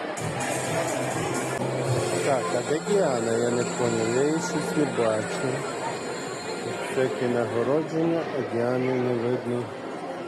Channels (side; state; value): both; identical; correlation 1.00